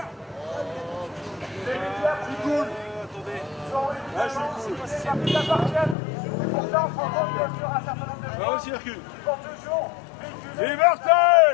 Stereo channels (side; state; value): right; drops out; at 6.0 s